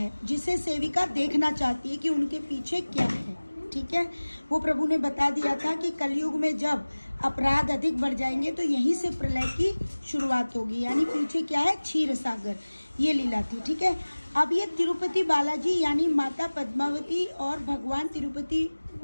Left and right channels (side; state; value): both; inverted; correlation -1.00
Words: जिसे सेविका देखना चाहती है कि उनके पीछे क्या है। ठीक है, वो प्रभु ने बता दिया था कि कलयुग में जब अपराध अधिक बढ़ जाएंगे तो यहीं से प्रलय की शुरुआत होगी, यानी पीछे क्या है, क्षीर सागर। ये लीला थी। ठीक है, अब ये तिरुपति बालाजी यानी माता पद्मावती और भगवान तिरुपति